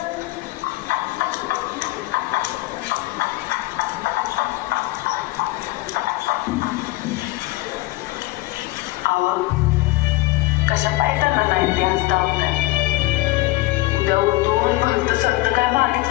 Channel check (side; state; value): right; quieter; 20.1 dB